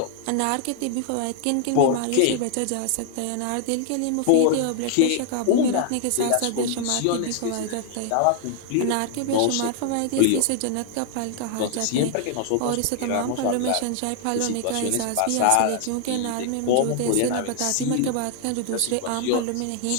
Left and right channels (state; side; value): different; both; correlation 0.00